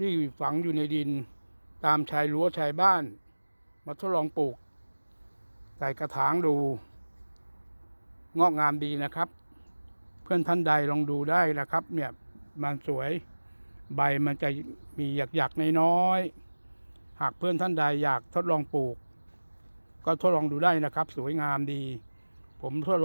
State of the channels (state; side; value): inverted; both; correlation -1.00